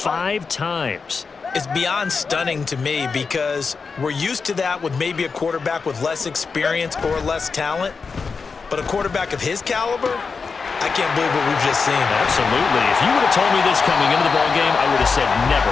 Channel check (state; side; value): quieter; right; 5.0 dB